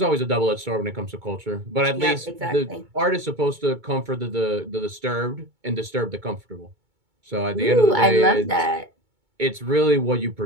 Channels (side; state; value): left; late; 2.2 ms